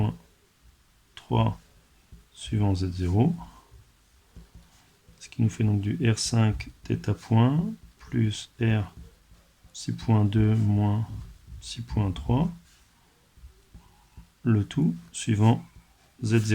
suivant Z0, ce qui nous fait donc du R5 θ point plus R psi.2 moins 6.3, le tout suivant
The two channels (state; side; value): identical; both; correlation 1.00